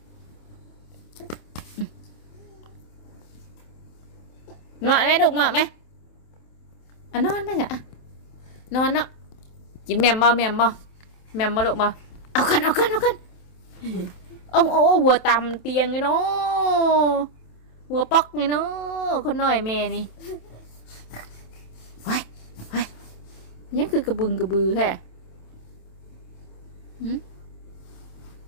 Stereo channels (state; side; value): late; right; 27 ms